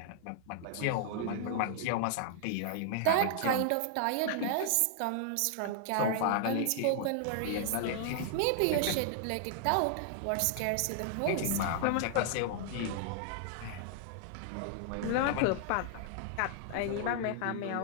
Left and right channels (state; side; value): different; both; correlation -0.01